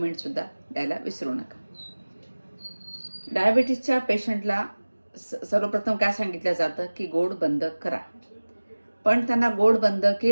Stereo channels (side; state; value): both; inverted; correlation -1.00